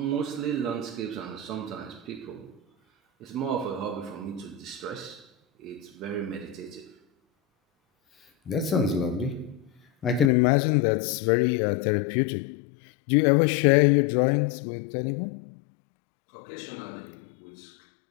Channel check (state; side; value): drops out; right; at 10.3 s